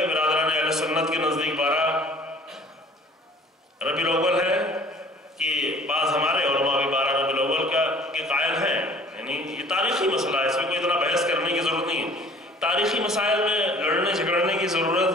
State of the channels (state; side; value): normal; both; correlation 0.51